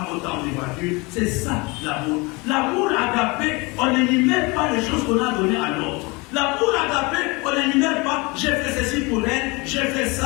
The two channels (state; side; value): quieter; right; 26.5 dB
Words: autant de voitures. C'est ça l'amour. L'amour agapé, on n'énumère pas les choses qu'on a données à l'autre. L'amour agapé, on n'énumère pas, j'ai fait ceci pour elle, j'ai fait